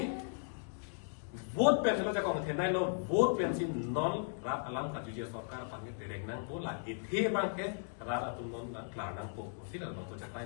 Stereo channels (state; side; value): silent; right; digital silence